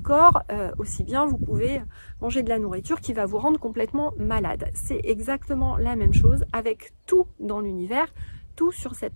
aussi bien vous pouvez manger de la nourriture qui va vous rendre complètement malade. C'est exactement la même chose avec tout dans l'univers, tout sur cette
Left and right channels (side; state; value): both; inverted; correlation -1.00